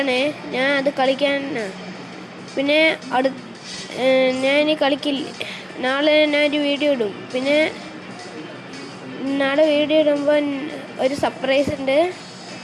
ഞാൻ അത് കളിക്കാൻ പിന്നെ ഞാൻ ഇനി കളിക്കില്ല. നാളെ ഞാനൊരു വീഡിയോ ഇടും. പിന്നെ നാളെ വീഡിയോ ഇടുമ്പോൾ ഒരു സർപ്രൈസ് ഉണ്ട്.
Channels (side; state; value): both; identical; correlation 1.00